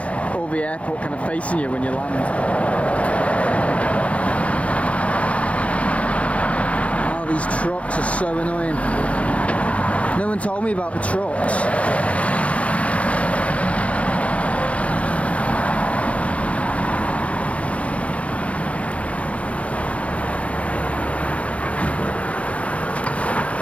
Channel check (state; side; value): late; right; 0.064 ms